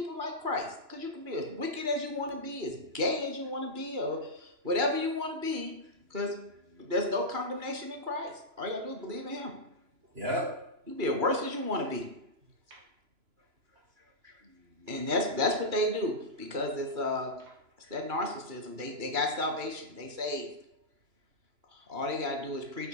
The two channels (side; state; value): left; late; 2.9 ms